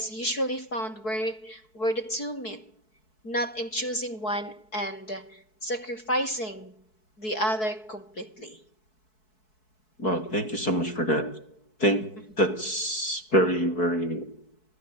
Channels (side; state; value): right; late; 4.6 ms